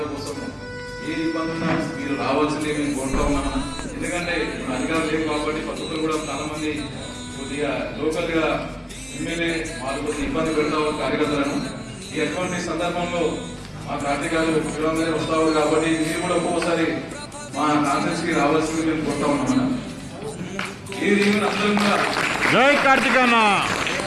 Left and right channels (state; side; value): identical; both; correlation 1.00